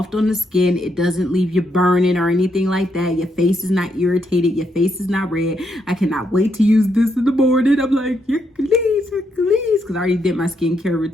on the skin. It doesn't leave you burning or anything like that. Your face is not irritated. Your face is not red. I cannot wait to use this in the morning. I'm like, Hercules, because I already did my skincare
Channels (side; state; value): both; normal; correlation 0.78